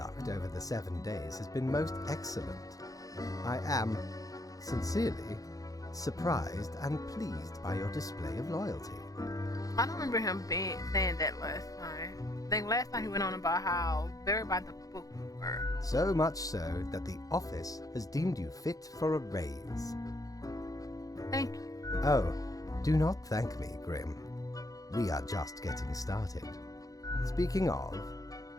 over the 7 days has been most excellent. I am, sincerely, surprised and pleased by your display of loyalty. I don't remember him saying that last time. I think last time he went on about how very by the book we were. So much so that the office has deemed you fit for a raise. Thank you. Oh, do not thank me, Grim. We are just getting started. Speaking of,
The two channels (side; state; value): right; late; 0.17 ms